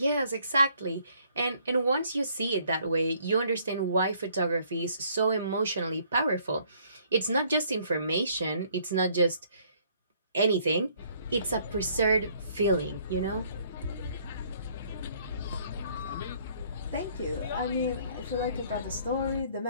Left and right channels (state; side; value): inverted; both; correlation -0.63